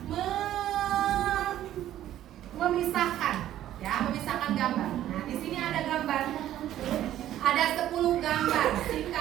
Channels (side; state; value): left; quieter; 12.5 dB